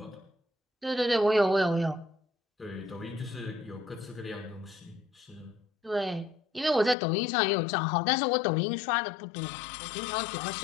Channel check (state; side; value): drops out; right; at 7.0 s